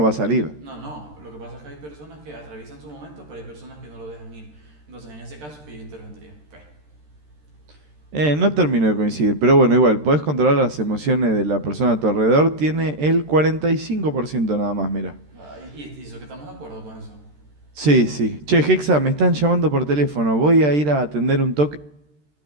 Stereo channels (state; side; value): late; left; 13 ms